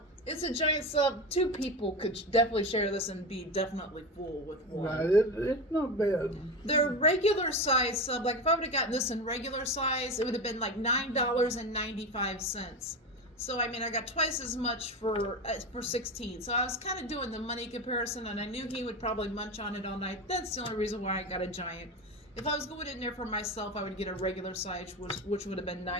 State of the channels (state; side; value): normal; both; correlation 0.22